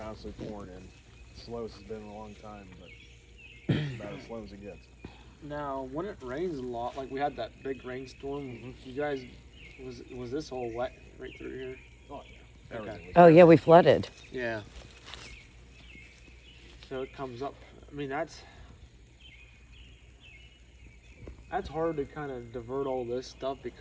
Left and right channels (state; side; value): identical; both; correlation 1.00